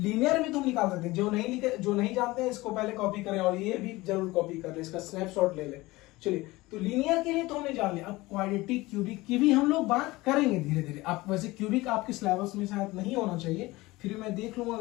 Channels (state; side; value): quieter; right; 20.3 dB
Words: भी तो हम निकाल सकते हैं। जो नहीं जानते हैं इसको पहले कॉपी करें और ये भी जरूर कॉपी कर ले, इसका स्नैपशॉट ले ले। चलिए, तो लीनियर के लिए तो हमने जान लिया। अब क्वाड्रेटिक, क्यूबिक की भी हम लोग बात करेंगे धीरे धीरे। आप वैसे क्यूबिक आपके सिलेबस में शायद नहीं होना चाहिए, फिर मैं देख लूंगा,